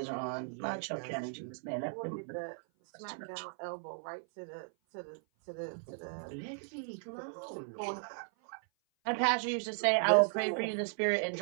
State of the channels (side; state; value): left; silent; 54 dB below the other